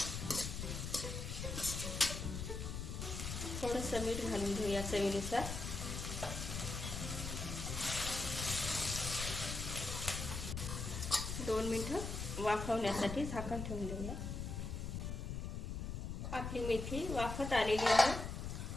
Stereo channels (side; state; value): left; noise; rumble, 4 dB below the sound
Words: थोडंसं मीठ घालून घेऊया चवीनुसार. दोन मिनिटं वाफवण्यासाठी झाकण ठेवून देऊया. आपली मेथी वाफत आलेली आहे.